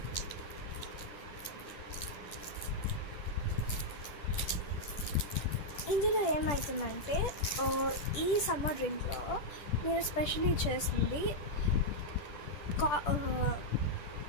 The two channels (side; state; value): right; late; 10 ms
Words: ఇందులో ఏమవుతుందంటే ఈ సమ్మర్ డ్రింక్లో నేను స్పెషల్లీ చేస్తుంది